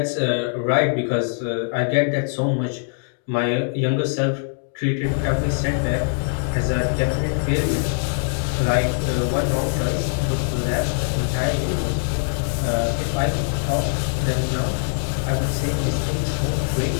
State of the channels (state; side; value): silent; right; 64 dB below the other